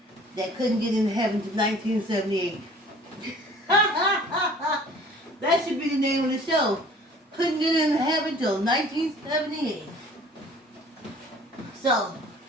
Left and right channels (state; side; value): normal; both; correlation 0.50